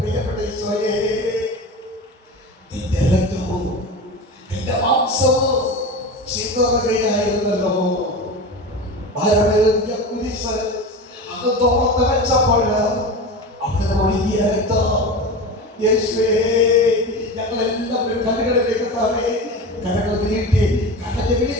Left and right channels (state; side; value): normal; both; correlation 0.28